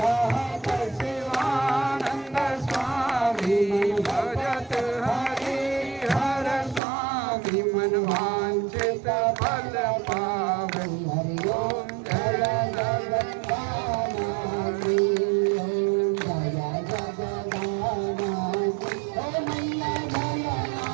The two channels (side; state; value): left; drops out; at 6.8 s